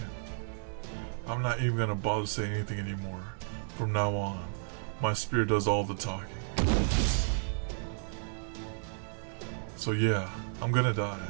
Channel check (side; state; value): left; silent; 56 dB below the other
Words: I'm not even gonna bother saying anything anymore. From now on, my spirit does all the talking. So yeah, I'm gonna die.